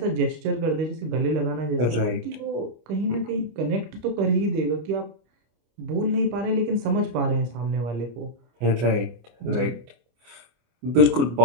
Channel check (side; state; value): left; late; 25 ms